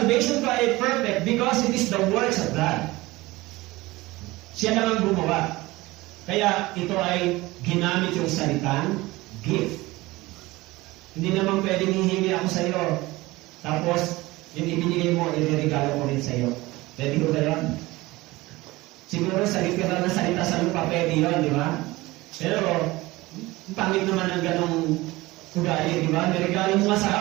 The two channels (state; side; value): quieter; left; 20.2 dB